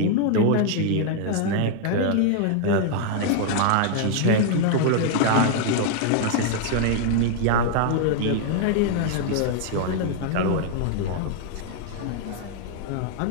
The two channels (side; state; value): both; different; correlation 0.00